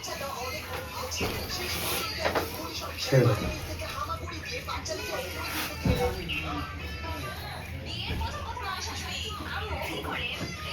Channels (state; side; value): identical; both; correlation 1.00